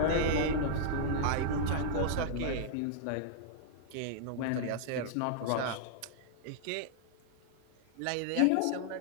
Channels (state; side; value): different; both; correlation -0.01